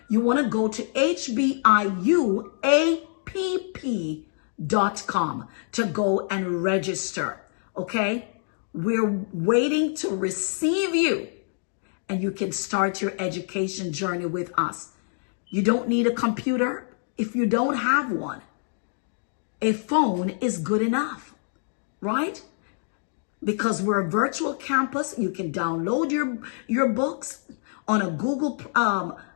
you want to go to hbiuapp.com to go and register. Okay? We're waiting to receive you, and you can start your education journey with us. You don't need a computer if you don't have one. A phone is good enough, right? Because we're a virtual campus, you can download your books on a Google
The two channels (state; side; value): silent; right; digital silence